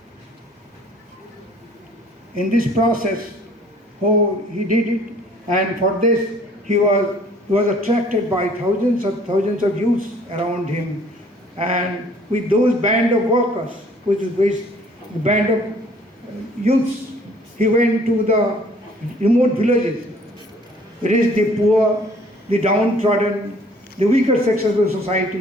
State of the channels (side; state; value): both; normal; correlation 0.56